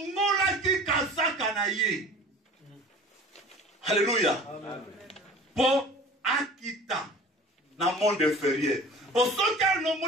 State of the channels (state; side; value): normal; both; correlation 0.43